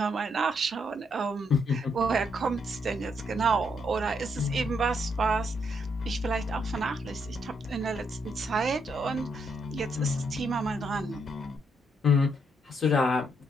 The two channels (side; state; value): both; normal; correlation 0.76